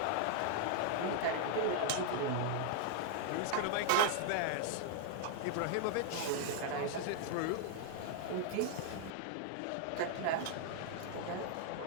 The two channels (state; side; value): different; both; correlation 0.00